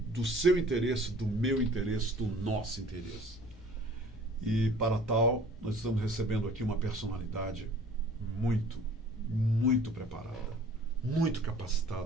seu interesse, do meu interesse, do nosso interesse. E para tal, nós estamos recebendo aqui uma personalidade muito preparada, muito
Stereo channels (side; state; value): both; normal; correlation 0.50